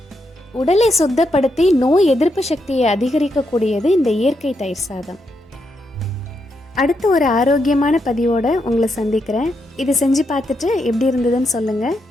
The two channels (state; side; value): normal; both; correlation 0.81